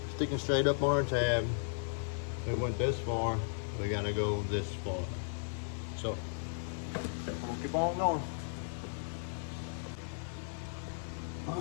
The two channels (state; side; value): silent; right; digital silence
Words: sticking straight up on our tab. It went this far, we gotta go this far. So I'm gonna keep on going. All